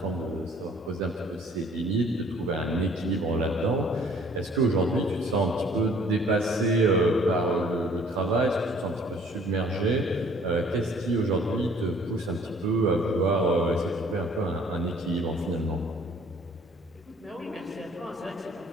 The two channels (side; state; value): both; normal; correlation 0.55